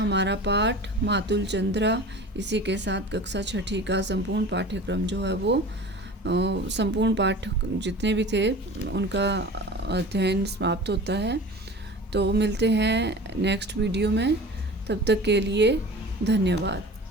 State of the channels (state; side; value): normal; both; correlation 0.38